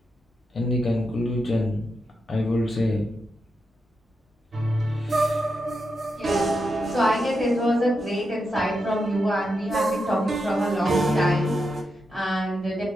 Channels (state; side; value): normal; both; correlation 0.86